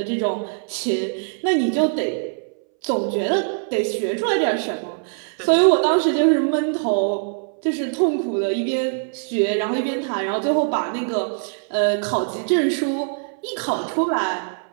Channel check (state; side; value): silent; left; 62 dB below the other